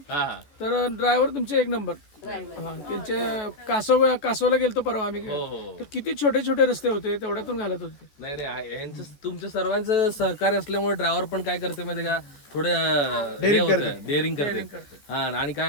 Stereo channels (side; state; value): right; late; 14 ms